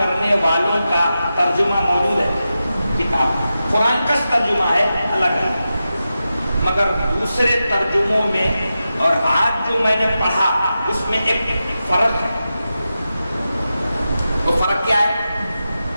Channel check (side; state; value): both; inverted; correlation -0.91